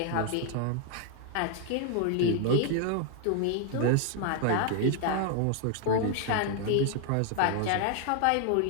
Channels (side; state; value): both; different; correlation 0.00